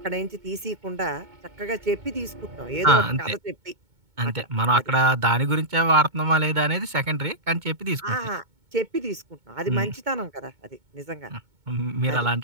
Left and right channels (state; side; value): late; left; 2.2 ms